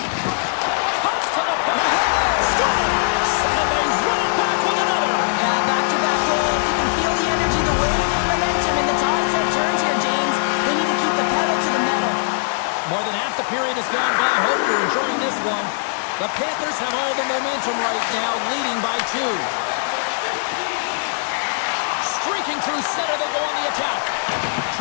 Pucks to the puck. Scores! And they run it back with another. Yeah, back-to-back goals. You can feel the energy, the wave, the momentum, and the tides have turned here, James. They need to keep the pedal to the metal. More than half the period has gone by. Hope you're enjoying this one. The Panthers have all the momentum right now, leading by 2. Streaking through center, they go on the attack.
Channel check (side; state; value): right; silent; digital silence